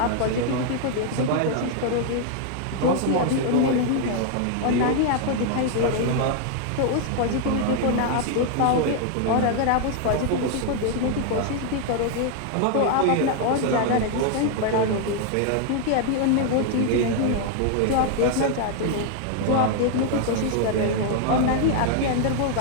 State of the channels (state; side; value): different; both; correlation 0.00